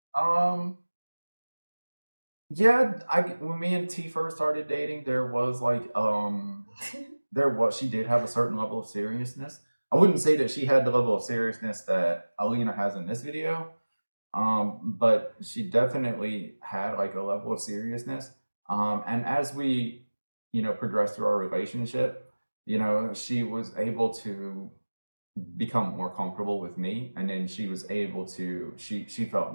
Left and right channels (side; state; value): both; inverted; correlation -1.00